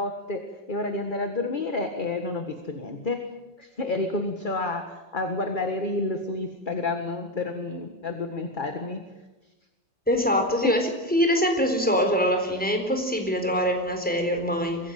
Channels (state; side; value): normal; both; correlation 0.12